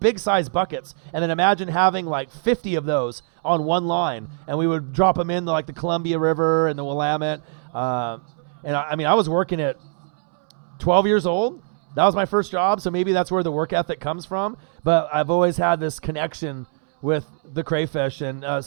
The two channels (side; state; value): left; silent; 64 dB below the other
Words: buckets. And then imagine having like 50 of those on one line, and we would drop them in like the Columbia River and the Willamette. And I mean, I was working at 12 years old. That was my first job, so maybe that's where the work ethic comes from. But I've always had this connection with the crayfish. And